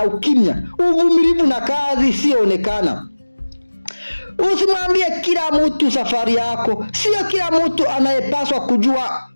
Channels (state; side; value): inverted; both; correlation -1.00